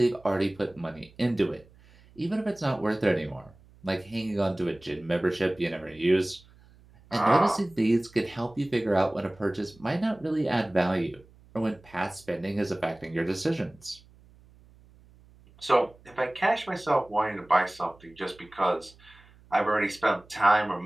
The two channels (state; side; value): noise; right; hum, 26 dB below the sound